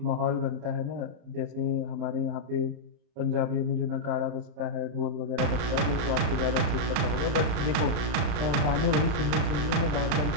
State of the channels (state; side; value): late; left; 35 ms